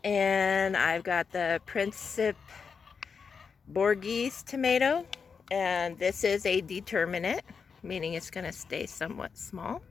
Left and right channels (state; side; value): quieter; right; 5.8 dB